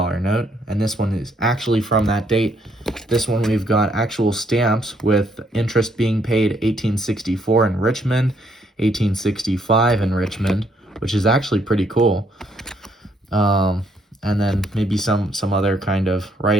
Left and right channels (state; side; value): normal; both; correlation 0.71